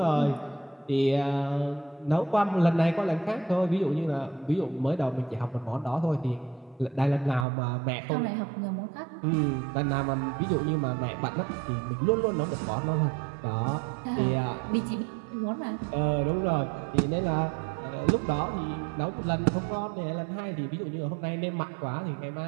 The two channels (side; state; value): left; drops out; at 7.5 s